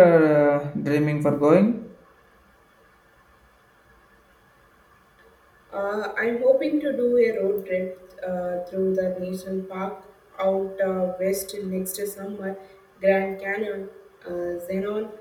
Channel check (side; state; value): both; identical; correlation 1.00